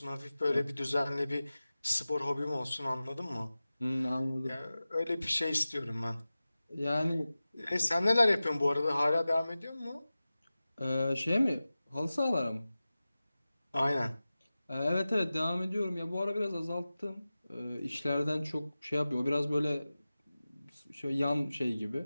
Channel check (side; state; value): both; inverted; correlation -0.96